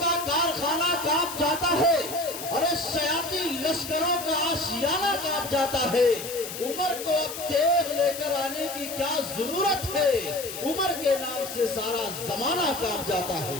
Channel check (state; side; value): noise; left; hiss, 9 dB below the sound